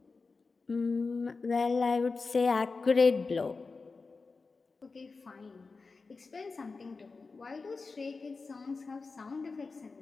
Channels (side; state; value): right; quieter; 4.2 dB